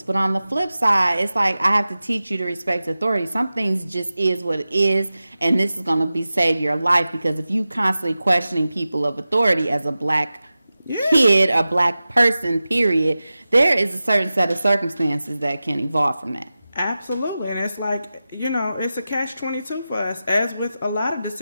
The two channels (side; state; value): both; inverted; correlation -0.94